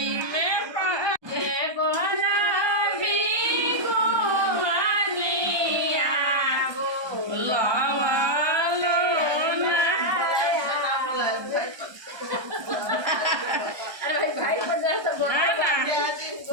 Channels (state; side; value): late; left; 1.2 ms